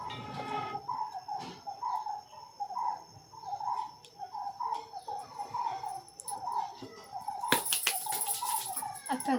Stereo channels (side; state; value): both; identical; correlation 1.00